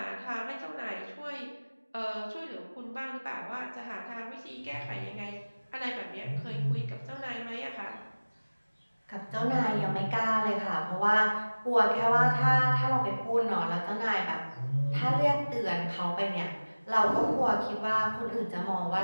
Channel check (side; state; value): both; inverted; correlation -1.00